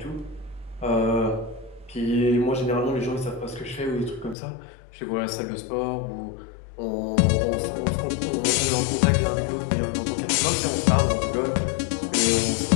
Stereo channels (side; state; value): right; drops out; at 4.4 s